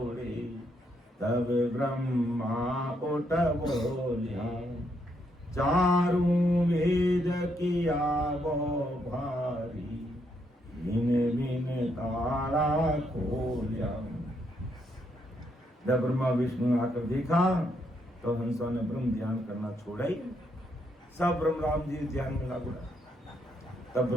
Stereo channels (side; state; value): both; normal; correlation 0.76